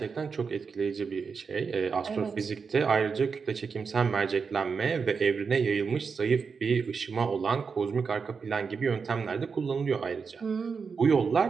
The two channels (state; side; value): quieter; left; 5.5 dB